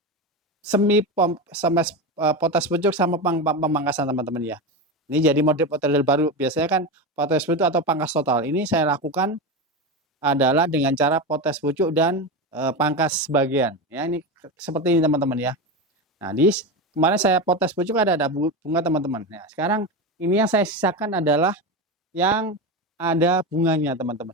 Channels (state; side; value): normal; both; correlation 0.19